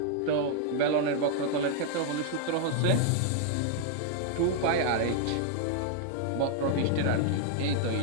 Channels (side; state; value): both; different; correlation 0.00